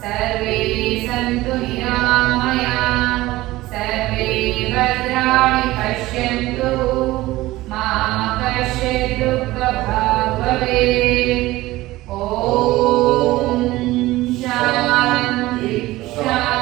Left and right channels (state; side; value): quieter; left; 17.9 dB